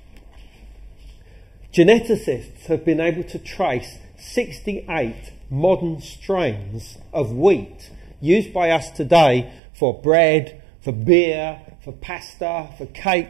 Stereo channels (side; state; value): left; drops out; at 9.6 s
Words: Geneticists have been able to trace 68 modern strains of wheat used by us today for bread, for beer, for pasta, for